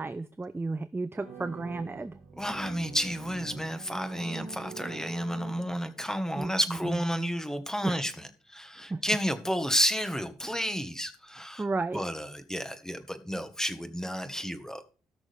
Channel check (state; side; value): normal; both; correlation 0.81